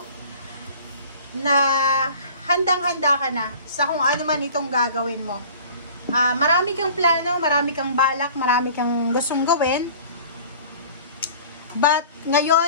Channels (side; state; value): both; inverted; correlation -0.45